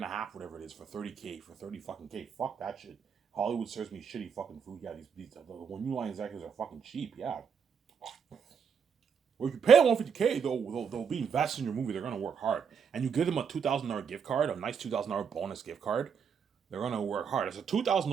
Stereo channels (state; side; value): quieter; left; 6.7 dB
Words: a half, whatever it is, for 30K, for 30 fucking K. Fuck that shit. Hollywood serves me shitty fucking food. Yeah, the new line executives are fucking cheap. Yeah. Or if you pay them 150K, they'll be invested in your movie. They're gonna work hard, and you give them a $2,000 gift card, a nice $2,000 bonus gift card. They're gonna work hard. It's a